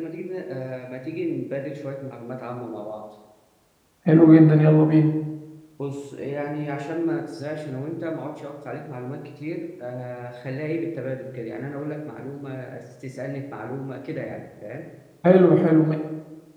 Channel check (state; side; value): identical; both; correlation 1.00